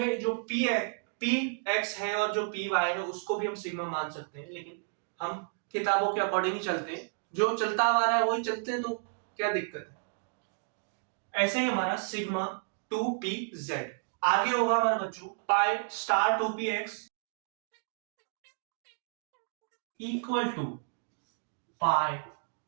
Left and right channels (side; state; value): left; silent; digital silence